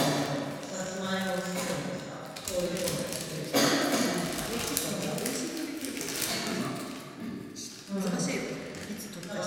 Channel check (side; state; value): both; identical; correlation 1.00